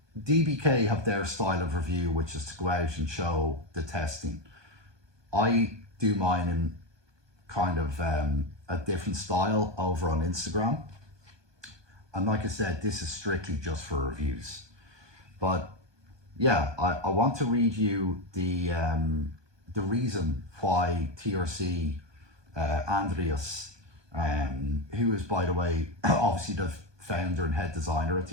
DBK have their style of review, which is to go out and show the testing. I do mine in kind of a different style over on Instagram. And like I said, this is strictly just for reviews. But yeah, I want to read you the reason why TRC Andreas, who is, by the way, obviously the founder and head designer at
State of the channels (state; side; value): late; left; 1.2 ms